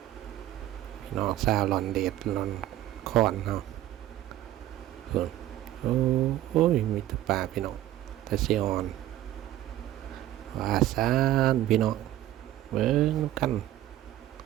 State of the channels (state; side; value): quieter; left; 14.1 dB